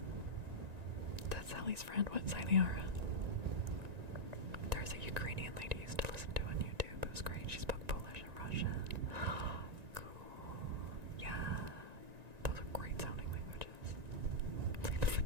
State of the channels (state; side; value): late; left; 1.9 ms